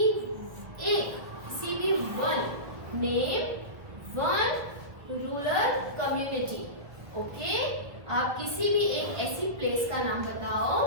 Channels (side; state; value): left; late; 1.7 ms